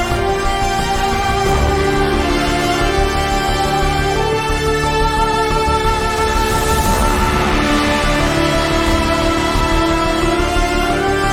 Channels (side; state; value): both; identical; correlation 1.00